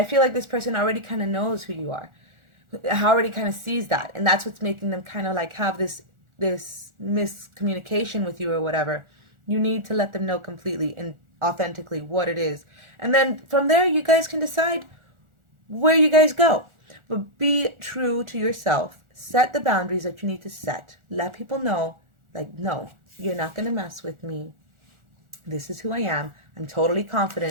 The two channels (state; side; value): late; left; 1.4 ms